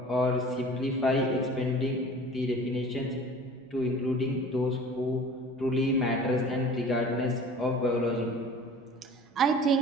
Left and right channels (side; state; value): both; normal; correlation 0.43